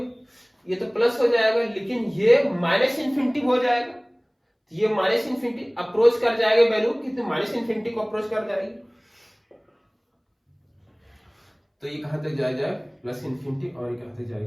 ये तो प्लस हो जाएगा, लेकिन ये माइनस इन्फिनिटी हो जाएगा। ये माइनस इन्फिनिटी अप्रोच कर जाएगा वैल्यू, कितने माइनस इन्फिनिटी को अप्रोच कर जाएगी, तो ये कहां तक जाएगा? प्लस इन्फिनिटी, और ये कहां तक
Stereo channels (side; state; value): both; identical; correlation 1.00